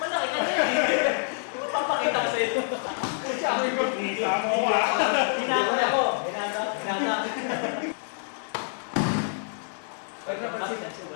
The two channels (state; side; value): silent; right; 60 dB below the other